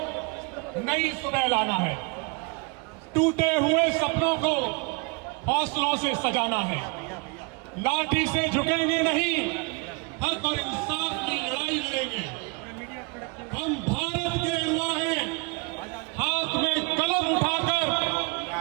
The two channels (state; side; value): quieter; left; 30.3 dB